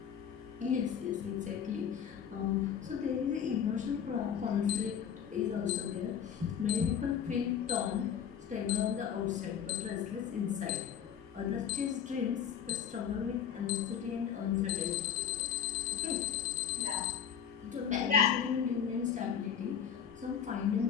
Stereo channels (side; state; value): right; quieter; 8.3 dB